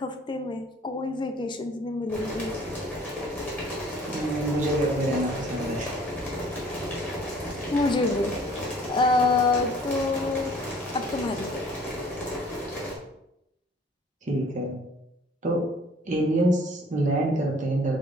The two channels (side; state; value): both; normal; correlation 0.53